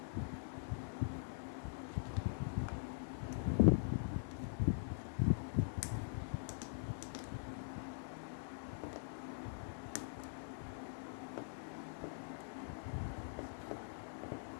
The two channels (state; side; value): silent; right; digital silence